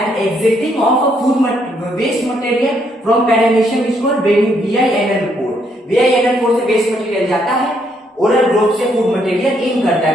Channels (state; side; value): normal; both; correlation 0.72